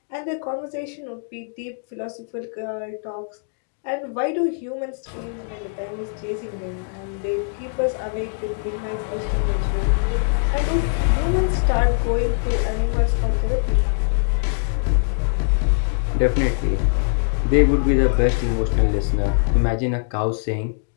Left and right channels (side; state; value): right; silent; digital silence